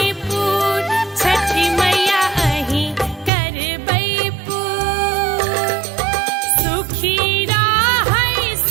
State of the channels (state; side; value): drops out; left; at 3.3 s